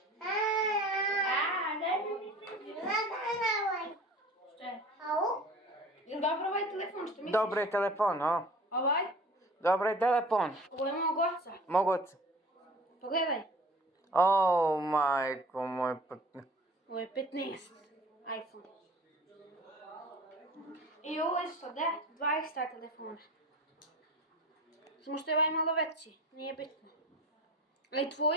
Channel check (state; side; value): normal; both; correlation 0.43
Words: Jel dobro ovaj telefon, što misliš? Dobro je telefon, o? Ovaj? Dobro je telefon. Ovo je mog oca. Mog oca. Pogledaj. O, majko moj. Ovo je 15. iPhone. I ovo je 20 telefona. Samo što je ovaj malo veći, nije bitno. Ali